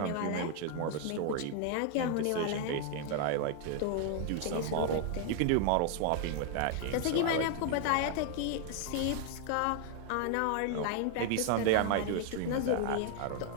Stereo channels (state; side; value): different; both; correlation 0.00